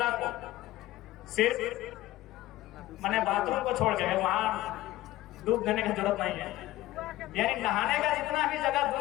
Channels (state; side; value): quieter; right; 16.2 dB